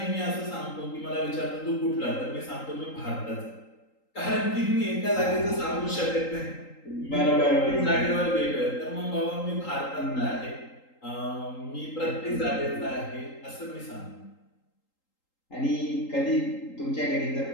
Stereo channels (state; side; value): late; right; 3.8 ms